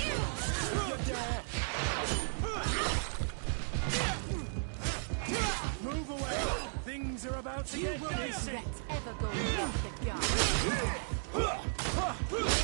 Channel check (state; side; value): silent; left; digital silence